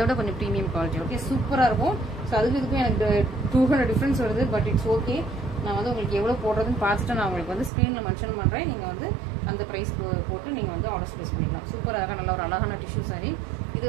கொஞ்சம் ப்ரீமியம் குவாலிட்டி. ஓகே, சூப்பராக இருக்கும். ஸோ அதுக்கு இதுக்கும் எனக்கு 200 டிஃப்ரென்ஸ் வருது. But it's okay. நான் வந்து உங்களுக்கு எவ்வளோ போடுறதுன்னு பார்த்துட்டு நான் உங்களுக்கு வந்து ஸ்க்ரீனில் மென்ஷன் பண்ணுறேன். நீங்கள் வந்து அந்த ப்ரைஸ் போட்டு நீங்கள் வந்து ஆர்டர் ப்ளேஸ் பண்ணிக்கலாம். சூப்பராக நல்ல ஒரு அழகான டிஷ்யூ சாரி. இது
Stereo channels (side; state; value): left; drops out; at 7.7 s